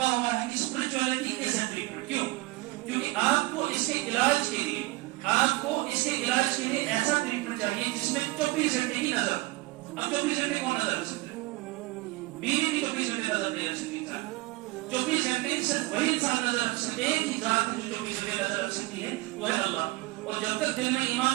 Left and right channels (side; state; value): left; quieter; 21.0 dB